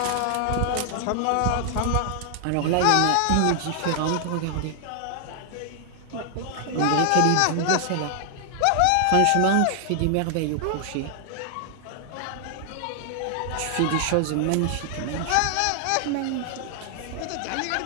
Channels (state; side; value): different; both; correlation 0.00